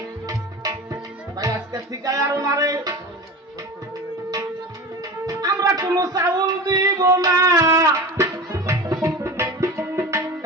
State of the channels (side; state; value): both; normal; correlation 0.31